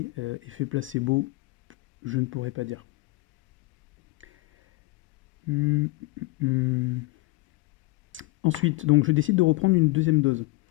effet placebo, je ne pourrais pas dire. Ensuite, donc je décide de reprendre une deuxième dose.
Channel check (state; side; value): quieter; right; 22.3 dB